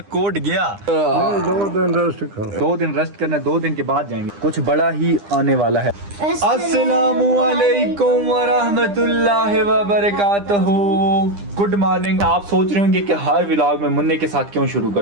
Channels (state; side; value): late; left; 9.9 ms